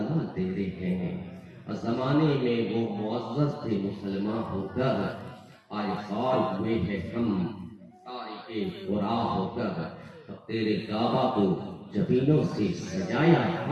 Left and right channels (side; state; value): both; identical; correlation 1.00